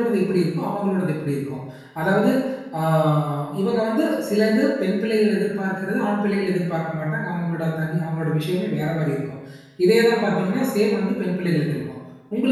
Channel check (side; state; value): both; identical; correlation 1.00